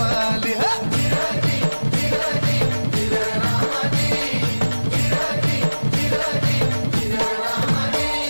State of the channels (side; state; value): both; inverted; correlation -1.00